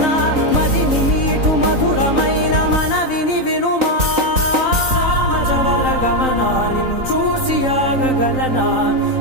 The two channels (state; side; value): late; left; 3.9 ms